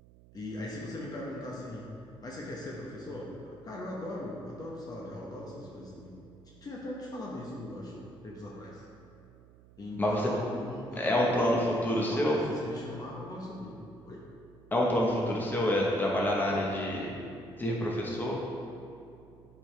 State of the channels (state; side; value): noise; right; hum, 23 dB below the sound